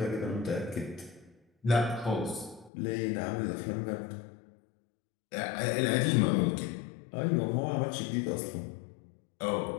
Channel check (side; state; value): right; drops out; at 2.7 s